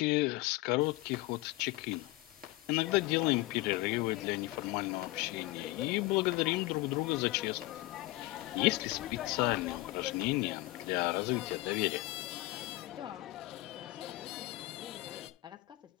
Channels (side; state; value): right; quieter; 20.2 dB